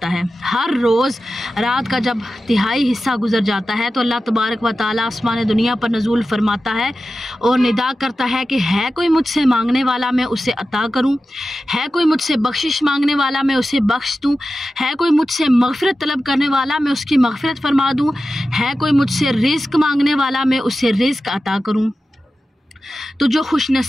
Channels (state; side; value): normal; both; correlation 0.93